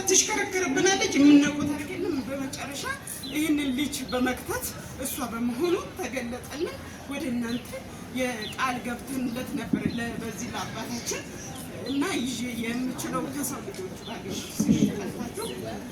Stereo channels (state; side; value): identical; both; correlation 1.00